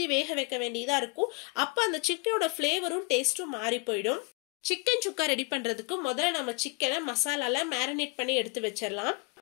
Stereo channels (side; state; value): right; quieter; 31.1 dB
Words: வேக வைக்க வேண்டியதா இருக்கும். அப்போ அந்த சிக்கனோட ஃப்ளேவரும் டேஸ்ட்டும் மாறி போயிடும். சிக்கன் சுக்கா ரெடி பண்றதுக்கு முதல்ல நம்ம சிக்கனை மசாலால மேரினேட் பண்ணி எடுத்து வச்சிடலாம்.